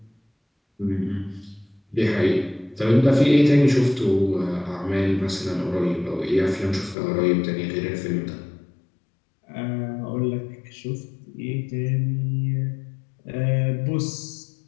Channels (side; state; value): right; drops out; at 7.0 s